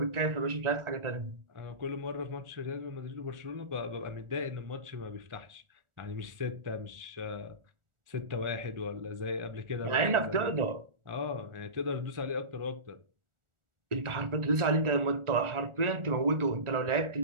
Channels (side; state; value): left; late; 1.4 ms